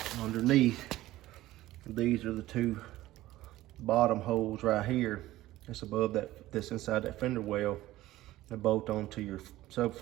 underneath, these are the 2 bottom holes right here. That's above that, that's inside that fender well. They bolt onto your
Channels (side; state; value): left; quieter; 16.1 dB